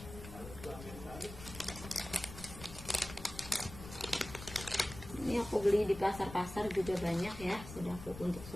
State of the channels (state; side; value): noise; left; rumble, 13 dB below the sound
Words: Ini aku beli di pasar-pasar juga banyak ya, untuk